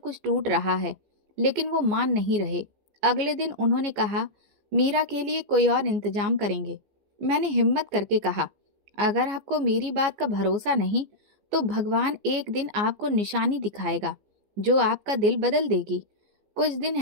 टूट रहा है, लेकिन वो मान नहीं रहे। अगले दिन उन्होंने कहा, मीरा के लिए कोई और इंतजाम करेंगे। मैंने हिम्मत करके कहा, अगर आपको मेरी बात का भरोसा नहीं तो भगवान एक दिन आपको निशानी दिखाएगा जो आपका दिल बदल देगी। कुछ दिन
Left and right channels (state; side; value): late; left; 15 ms